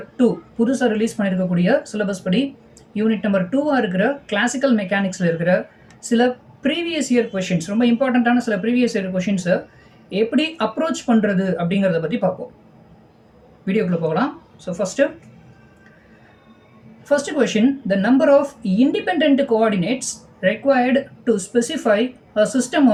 2 புதுசாக ரிலீஸ் பண்ணியிருக்கக்கூடிய சிலபஸ் படி யூனிட் நம்பர் 2 இருக்கிற கிளாசிக்கல் மெக்கானிக்ஸில் இருக்கிற சில ப்ரீவியஸ் இயர் கொஷின்ஸ், ரொம்ப இம்பார்ட்டண்ட்டான சில ப்ரீவியஸ் இயர் கொஷின்ஸை எப்படி அப்ரோச் பண்ணுறது அப்படிங்கிறத பற்றி பார்ப்போம். வீடியோக்குள்ளே போகலாம். So First question, the number of independent coordinates required to specify a system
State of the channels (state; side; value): identical; both; correlation 1.00